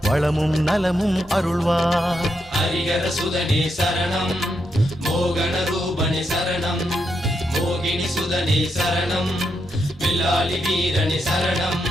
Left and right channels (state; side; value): normal; both; correlation 0.82